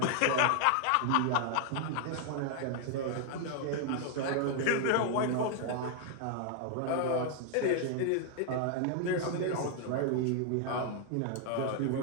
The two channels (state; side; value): different; both; correlation 0.00